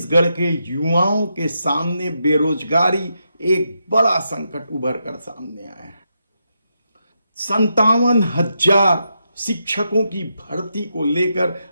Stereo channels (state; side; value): inverted; both; correlation -0.83